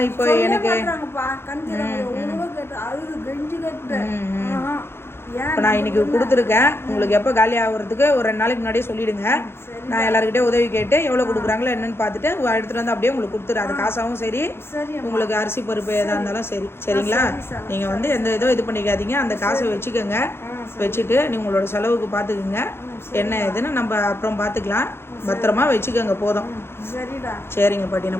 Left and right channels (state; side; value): late; right; 0.12 ms